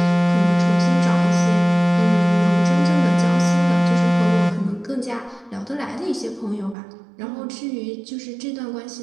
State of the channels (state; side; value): drops out; left; at 6.8 s